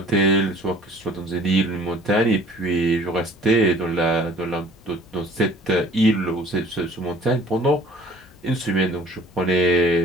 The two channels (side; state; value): both; normal; correlation 0.51